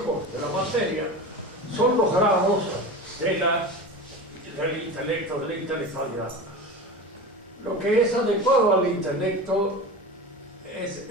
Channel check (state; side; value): normal; both; correlation 0.29